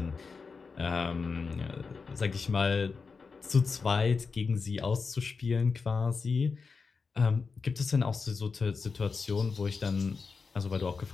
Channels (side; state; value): right; quieter; 4.9 dB